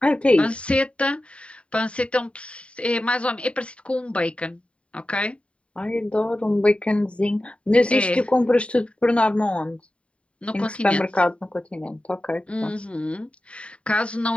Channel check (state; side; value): late; right; 0.061 ms